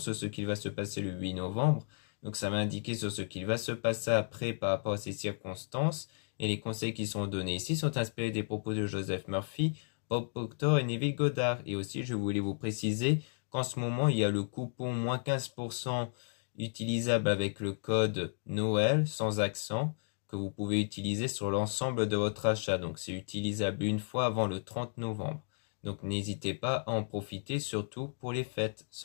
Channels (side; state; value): right; silent; digital silence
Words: ce qu'il va se passer le 8 novembre. Donc ça va indiquer sur ce qu'il va se passer après par rapport à ces circonstances. Et les conseils qui sont donnés ici sont inspirés des propos de Joseph Murphy, Bob Proctor et Neville Goddard. Et aussi, je voulais vous préciser qu'en ce moment, il y a le coupon moins 15% utilisable avec le code Noël sans accent que vous pouvez utiliser sur l'ensemble de votre achat. Donc c'est utilisable une fois avant le 30 novembre. Donc n'hésitez pas à en profiter, surtout pour les fêtes.